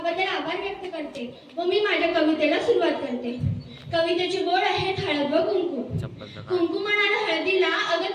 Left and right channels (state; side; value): identical; both; correlation 1.00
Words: आभार व्यक्त करते व मी माझ्या कवितेला सुरुवात करते. कवितेचे बोल आहेत हळद व कुंकू. कुंकू म्हणाला हळदीला